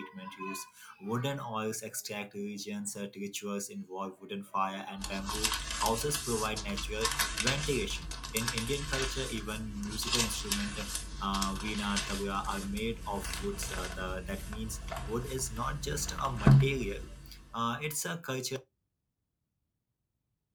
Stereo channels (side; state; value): both; identical; correlation 1.00